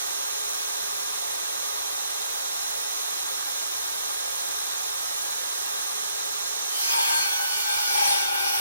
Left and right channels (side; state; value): both; inverted; correlation -0.72